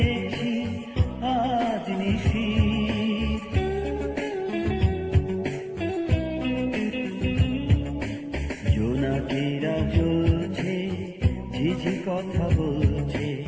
আজ নিশির। জোনাকিরা জ্বলছে, ঝিঝি কথা বলছে,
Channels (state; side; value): identical; both; correlation 1.00